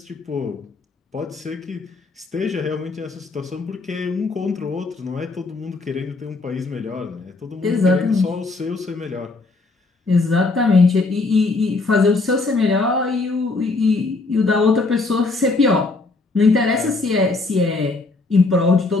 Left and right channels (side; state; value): right; quieter; 3.6 dB